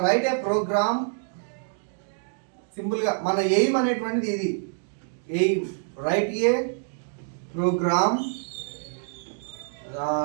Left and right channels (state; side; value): silent; left; digital silence